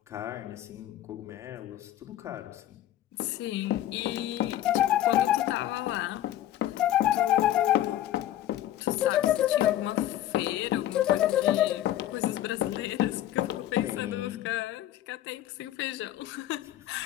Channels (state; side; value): quieter; right; 12.9 dB